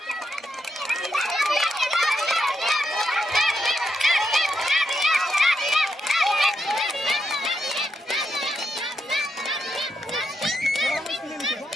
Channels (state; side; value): normal; both; correlation 0.82